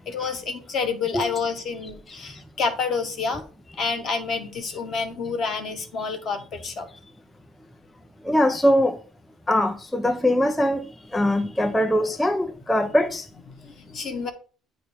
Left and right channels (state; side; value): normal; both; correlation 0.82